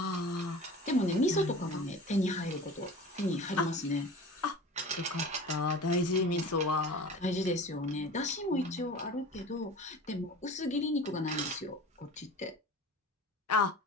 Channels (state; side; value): normal; both; correlation 0.38